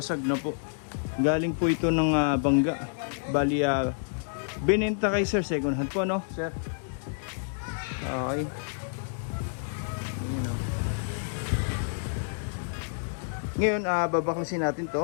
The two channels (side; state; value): right; silent; digital silence